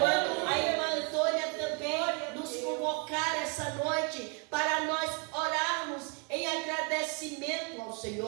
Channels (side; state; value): left; quieter; 35.8 dB